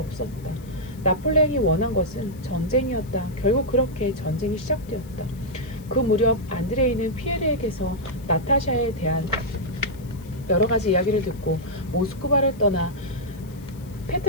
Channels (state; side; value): noise; left; hiss, 25 dB below the sound